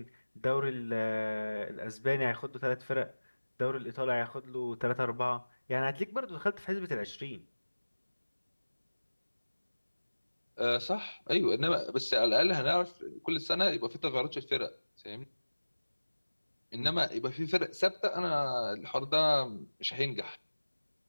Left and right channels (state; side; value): inverted; both; correlation -1.00